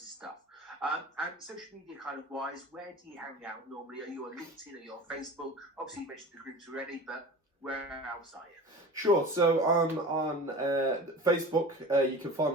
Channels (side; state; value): both; normal; correlation 0.37